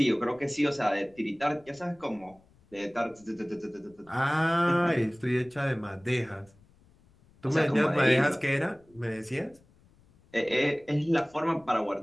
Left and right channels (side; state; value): left; noise; rumble, 30 dB below the sound